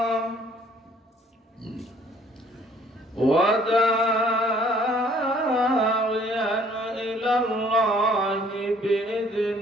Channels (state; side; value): normal; both; correlation 0.59